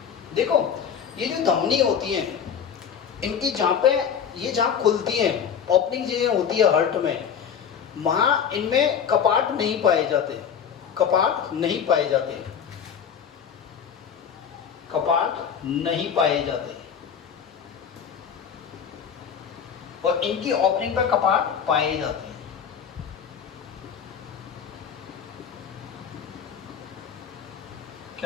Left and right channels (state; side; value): quieter; right; 7.6 dB